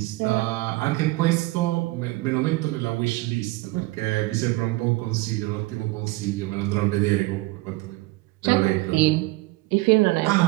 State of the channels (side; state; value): left; quieter; 20.9 dB